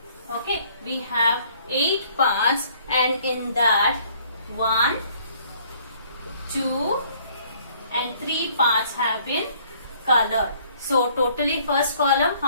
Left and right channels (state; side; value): inverted; both; correlation -0.60